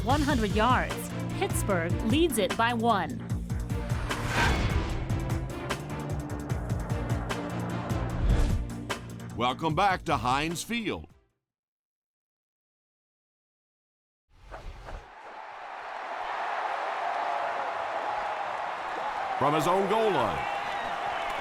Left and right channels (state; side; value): identical; both; correlation 1.00